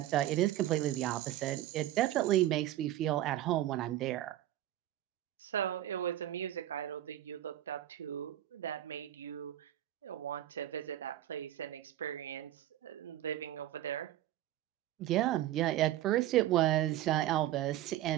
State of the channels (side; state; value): left; quieter; 13.3 dB